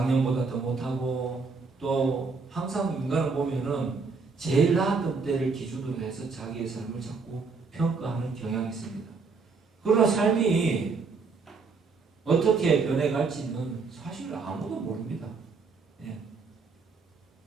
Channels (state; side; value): quieter; left; 4.5 dB